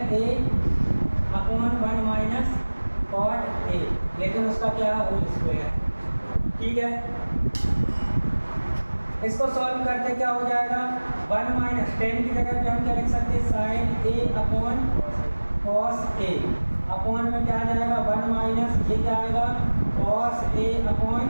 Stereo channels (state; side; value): inverted; both; correlation -1.00